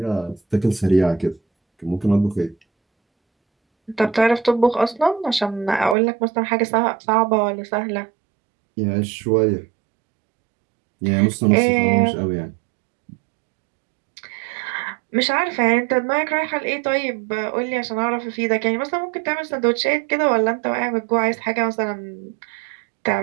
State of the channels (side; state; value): left; drops out; at 6.0 s